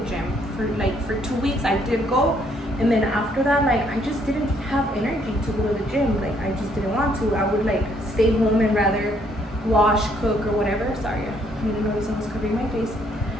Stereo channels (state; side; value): normal; both; correlation 0.68